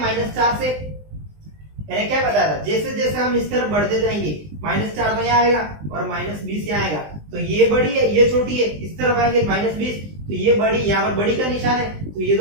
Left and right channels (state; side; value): late; left; 20 ms